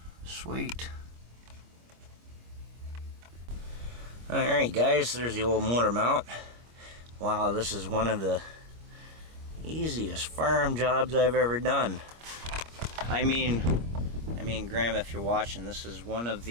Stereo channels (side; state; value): left; late; 25 ms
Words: Sweet. Alright guys, there's the old motor mount. Wow, this is one of the easiest farm jobs I've ever done. I mean Graham, if you're watching, this is one of